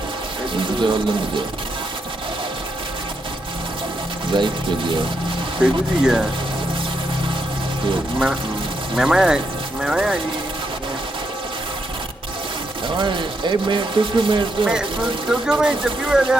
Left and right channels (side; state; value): both; normal; correlation 0.80